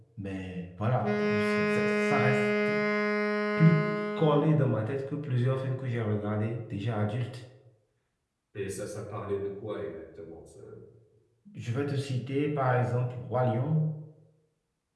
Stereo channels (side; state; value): both; identical; correlation 1.00